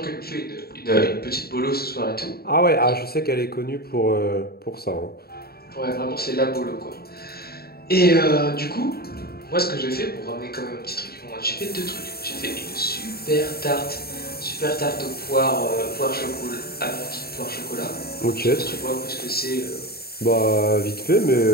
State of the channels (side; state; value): right; late; 0.45 ms